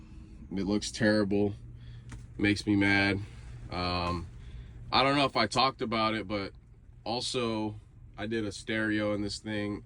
It looks terrible, makes me mad. I don't know if I talked about it, but also I did a stereo in this thing.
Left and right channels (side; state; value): both; identical; correlation 1.00